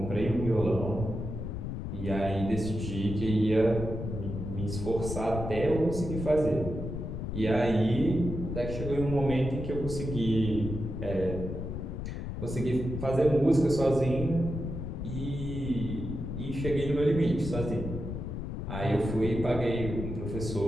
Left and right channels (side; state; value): left; noise; rumble, 5 dB below the sound